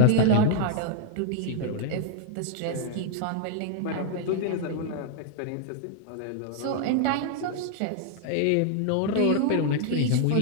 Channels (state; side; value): different; both; correlation 0.00